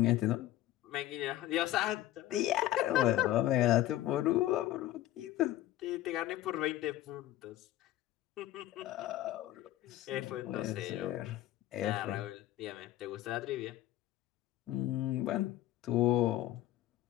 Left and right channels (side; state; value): right; quieter; 14.4 dB